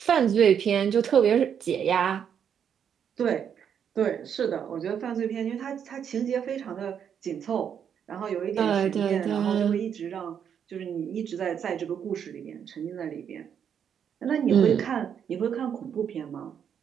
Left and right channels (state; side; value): quieter; left; 8.1 dB